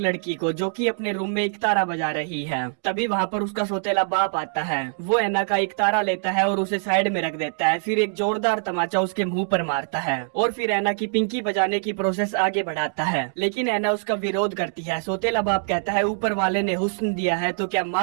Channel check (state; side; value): silent; left; digital silence